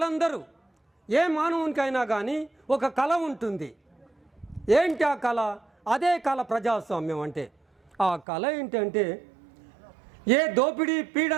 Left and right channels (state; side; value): drops out; left; at 8.2 s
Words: ఏ మానవునికైనా కానీ ఒక కళ ఉంటుంది. ఏంటి ఆ కళ? అదే కళ ప్రజాస్వామ్యం అంటే. ఆ కళ ఏంటంటే ఏ దోపిడీ,